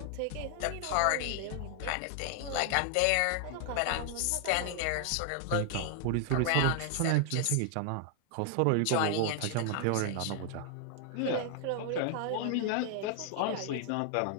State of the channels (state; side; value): different; both; correlation 0.00